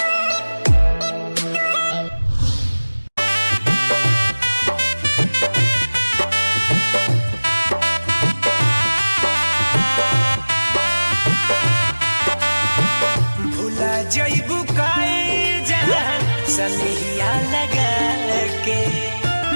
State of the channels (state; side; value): inverted; both; correlation -1.00